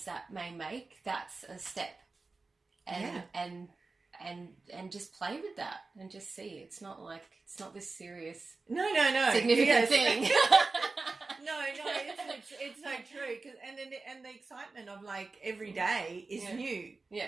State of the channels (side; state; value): left; quieter; 3.8 dB